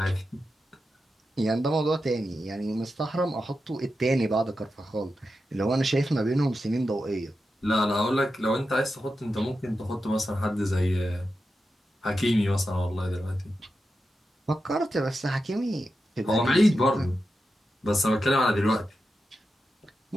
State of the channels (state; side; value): normal; both; correlation 0.90